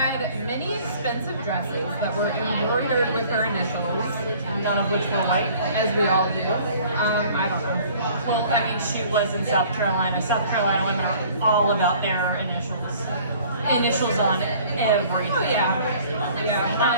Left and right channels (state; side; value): inverted; both; correlation -0.52